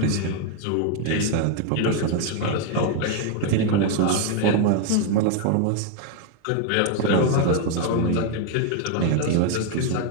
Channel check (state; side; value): different; both; correlation 0.01